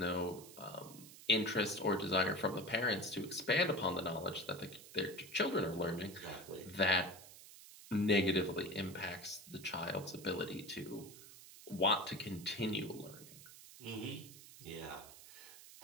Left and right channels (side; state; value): right; noise; hiss, 17 dB below the sound